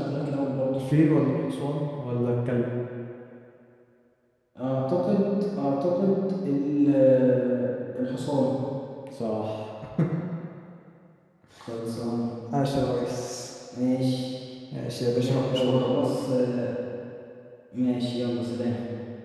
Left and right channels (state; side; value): identical; both; correlation 1.00